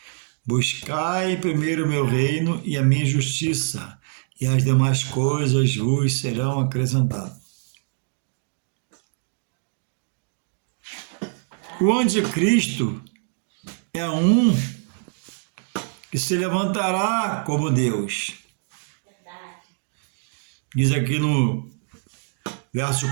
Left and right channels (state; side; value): silent; left; digital silence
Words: Buscai primeiro o meu reino e a minha justiça, e as demais coisas vos serão acrescentadas. O anticristo é um que se levantará como Deus. Diz aqui no